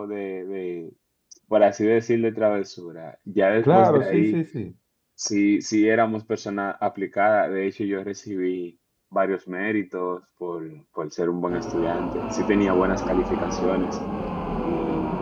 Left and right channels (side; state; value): both; identical; correlation 1.00